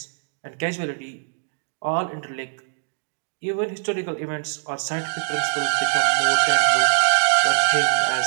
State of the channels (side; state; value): left; silent; digital silence